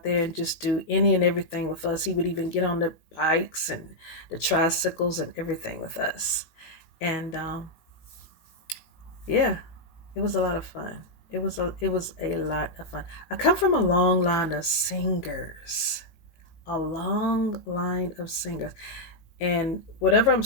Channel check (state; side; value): late; right; 18 ms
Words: there and just do any and everything with us. He would even get on the bikes and the tricycles and everything with us. And yeah, it was a lot of fun. It was a lot of fun. I come from a long line of singers. A long line of singers. And whatever I'm